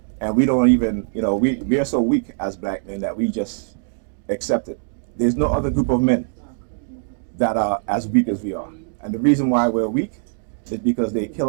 And we don't even, we are so weak as black men that we just accept it. There's no other group of men that are as weak as we are. And the reason why we're weak is because they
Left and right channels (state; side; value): silent; left; digital silence